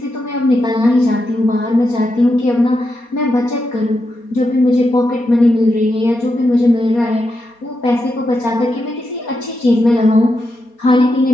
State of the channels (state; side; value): late; right; 4.2 ms